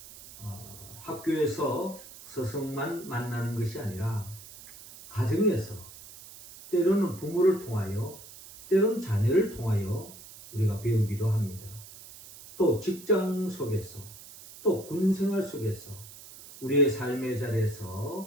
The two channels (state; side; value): noise; right; hiss, 17 dB below the sound